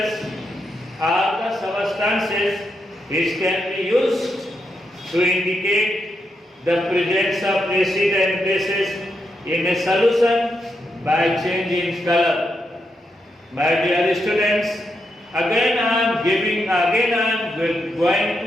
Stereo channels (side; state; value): both; normal; correlation 0.83